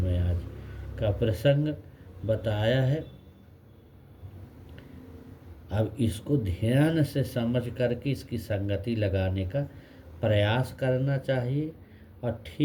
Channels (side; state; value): both; identical; correlation 1.00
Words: आज का प्रसंग बताया है। अब इसको ध्यान से समझ करके इसकी संगति लगाने का प्रयास करना चाहिए और